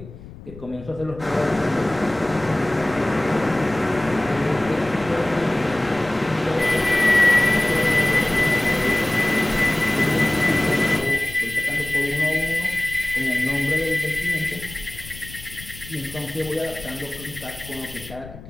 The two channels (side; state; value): left; noise; rumble, 16 dB below the sound